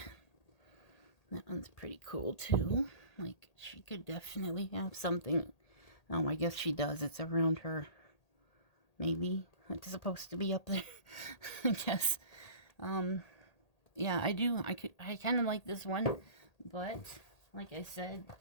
That one's pretty cool too. Like, she could definitely have something. Oh, I guess she does. It's around her. Maybe it's supposed to be up there. I guess. Yeah, I do. I kind of like this one, but like I said,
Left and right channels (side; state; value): right; late; 1.8 ms